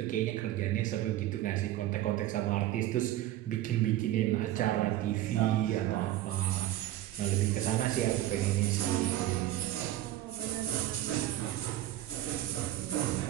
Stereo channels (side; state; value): left; quieter; 14.1 dB